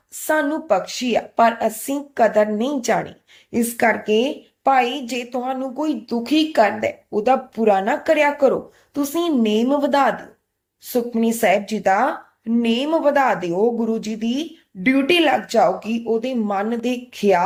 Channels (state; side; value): identical; both; correlation 1.00